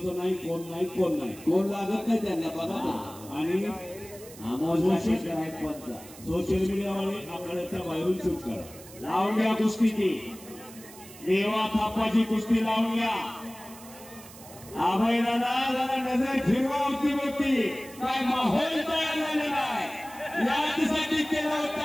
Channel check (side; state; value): right; noise; hiss, 18 dB below the sound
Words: नाही, कोण नाही, कोण नाही, कोण लागत नाही त्यांना बघा. आणि सोशल मीडियावाले आकड्याच्या बाहेरून शूट करा. लावून घ्या कुस्ती ती. देवा थापाची कुस्ती लावून घ्या. अभय दादा जरा नजर फिरवा होती होती काय माहोल तयार झालेला आहे. यासाठी केला